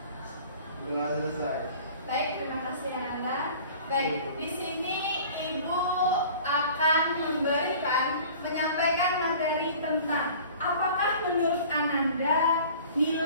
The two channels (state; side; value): inverted; both; correlation -0.45